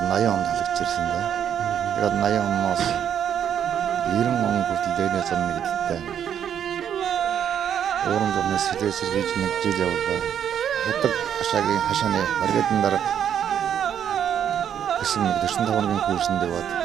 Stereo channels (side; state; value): left; quieter; 9.1 dB